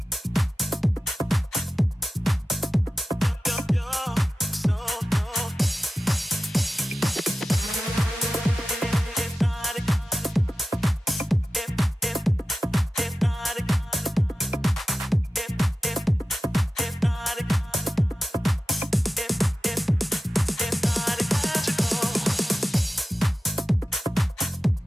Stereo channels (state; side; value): normal; both; correlation 0.94